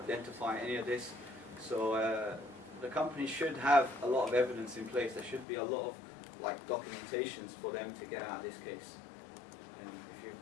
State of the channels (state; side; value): drops out; right; at 5.5 s